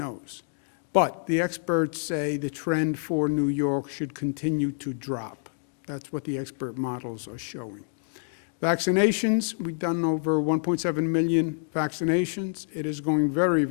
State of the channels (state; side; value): silent; right; digital silence